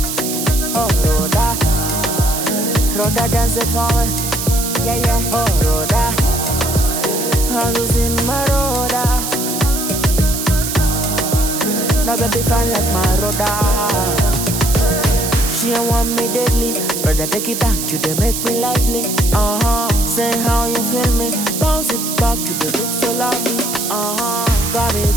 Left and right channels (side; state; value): right; noise; hiss, 4 dB below the sound